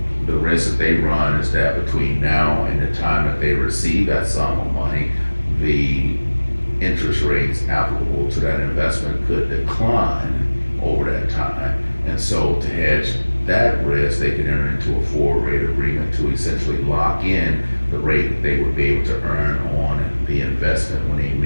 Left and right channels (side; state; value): both; inverted; correlation -1.00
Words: the risk that they run is that between now and the time that they receive that sum of money, the interest rates applicable to that investment could decline over that time. And so to hedge that risk, they can enter into a forward rate agreement to essentially lock in the rate that they would be able to earn on the investment when they